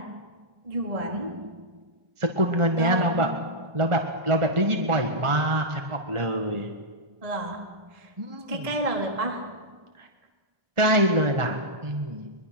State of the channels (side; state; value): left; late; 1.4 ms